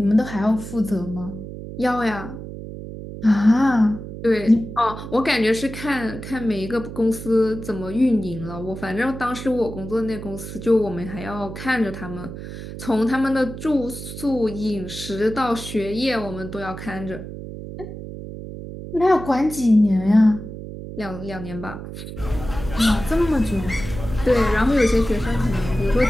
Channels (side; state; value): right; noise; hum, 10 dB below the sound